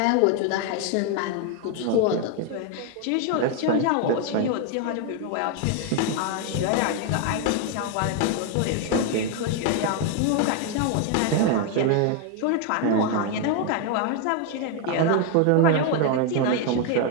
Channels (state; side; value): different; both; correlation 0.01